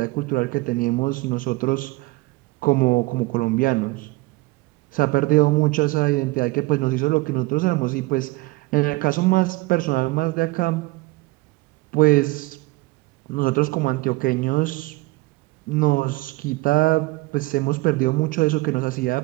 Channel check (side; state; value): left; quieter; 21.7 dB